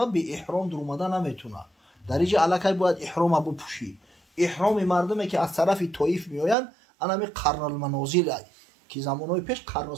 به احرام در اومدن نمیتونه، در اینجا الکی باید احرام بپوشی. احرام مردمی که از طرف طائف میآیند انا می قرن المنازل ای که زمانهای پیش قرن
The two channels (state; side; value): drops out; left; at 6.6 s